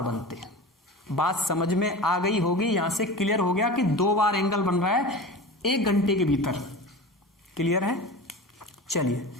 बनते हैं। बात समझ में आ गई होगी, यहां से क्लियर हो गया कि 2 बार एंगल बन रहा है 1 घंटे के भीतर। क्लियर है? चलिए,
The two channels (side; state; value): both; normal; correlation 0.32